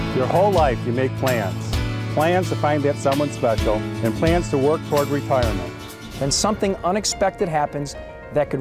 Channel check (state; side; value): identical; both; correlation 1.00